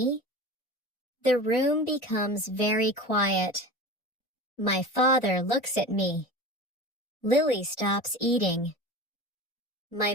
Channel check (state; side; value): normal; both; correlation 0.32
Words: The room becomes very quiet. My father looks at me. Lily stops eating. My